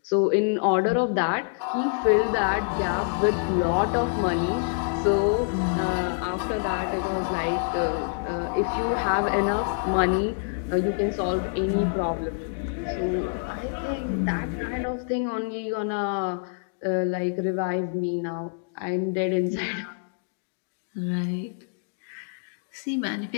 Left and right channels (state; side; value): silent; right; digital silence